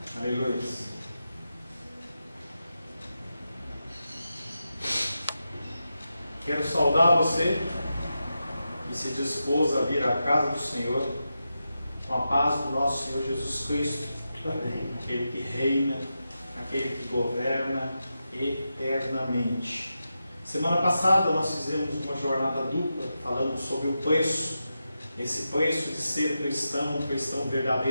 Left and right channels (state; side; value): inverted; both; correlation -0.90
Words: Aleluia. Quero saudar você que se dispôs a vir à casa do Senhor com a paz do nosso Senhor Jesus Cristo. Amém. Aquele que reina, aquele que governa eternamente. Semana passada nós fizemos uma jornada dupla falando sobre o preço, esse preço de ser cristão, um cristão